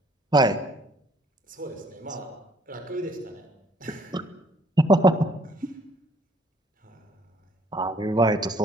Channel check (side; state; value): both; normal; correlation 0.61